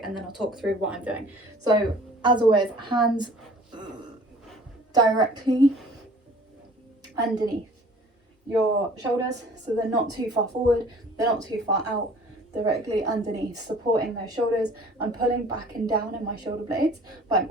and then I'll talk through what I'm doing. So as always, hands directly underneath your shoulders, so they're not too far forward, they're not too far out, directly underneath, supporting those shoulders. I'm pulling back and down in my shoulder blades, but I'm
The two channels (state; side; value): normal; both; correlation 0.49